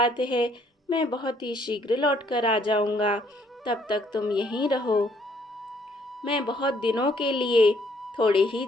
है, मैं बहुत ही शीघ्र लौट कर आ जाऊंगा, तब तक तुम यहीं रहो। मैं बहुत दिनों के लिए थोड़े ही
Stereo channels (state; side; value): normal; both; correlation 0.66